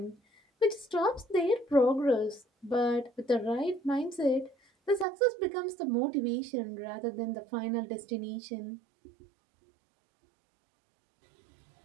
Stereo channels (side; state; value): left; drops out; at 5.1 s